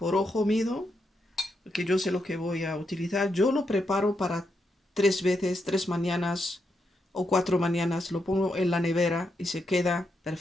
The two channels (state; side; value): normal; both; correlation 0.82